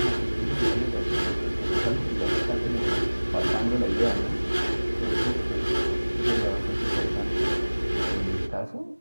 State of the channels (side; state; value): both; inverted; correlation -1.00